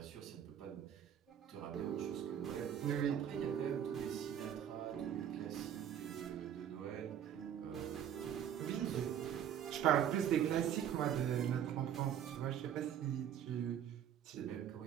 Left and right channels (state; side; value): quieter; left; 9.6 dB